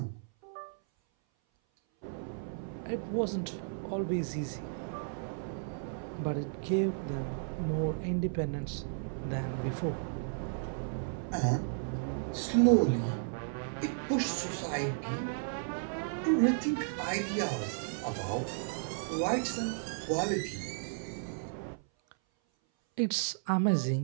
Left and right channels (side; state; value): left; silent; 55 dB below the other